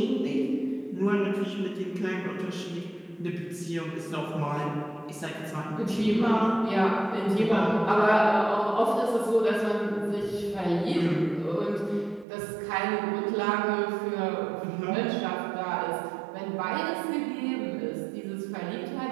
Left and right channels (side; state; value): left; drops out; at 12.2 s